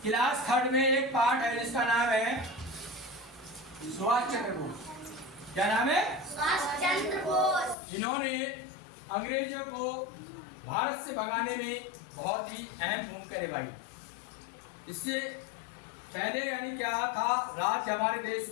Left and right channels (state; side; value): drops out; right; at 7.8 s